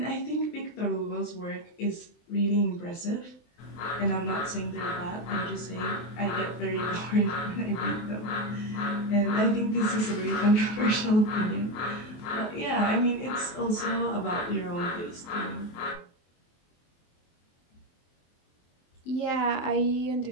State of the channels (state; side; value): late; right; 23 ms